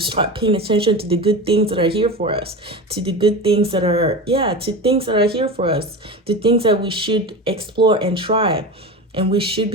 paying attention to the good things that are here for us, to the good things that are, to things that are here for us, to things that we should explore and try. And we should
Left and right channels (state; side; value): normal; both; correlation 0.27